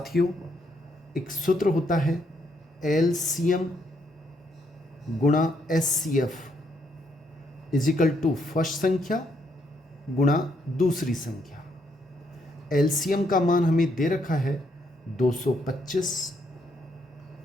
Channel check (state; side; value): normal; both; correlation 0.74